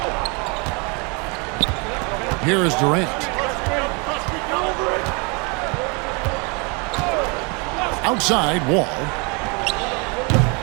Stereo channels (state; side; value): quieter; left; 31.7 dB